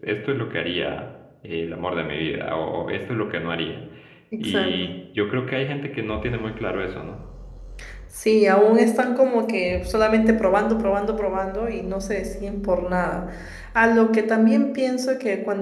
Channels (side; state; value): both; identical; correlation 1.00